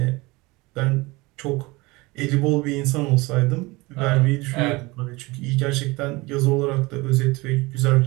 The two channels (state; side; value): quieter; left; 23.1 dB